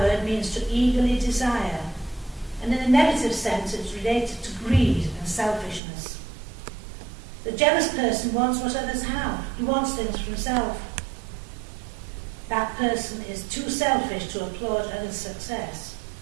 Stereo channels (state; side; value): drops out; left; at 5.8 s